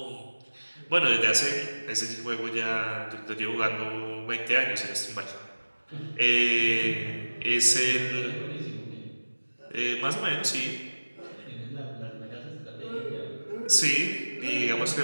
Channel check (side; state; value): both; inverted; correlation -1.00